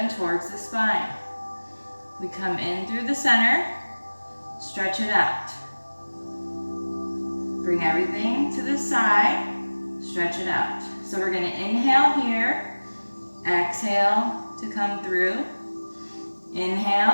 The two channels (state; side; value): inverted; both; correlation -1.00